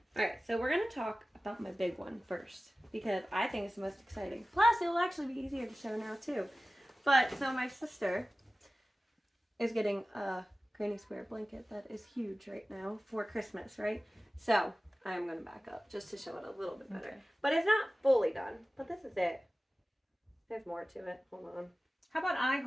All right, so we're going to talk about my big one first because I think it's the most exciting. Plus, it will actually be easier to show now, too. But, so my sister is getting a granny square blanket that is huge right now for Christmas, right? So, I'm going to back up just to show it a little bit better. Okay. But it's not fully done, but this is it. There's more to it. Hold on. How about I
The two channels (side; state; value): both; normal; correlation 0.96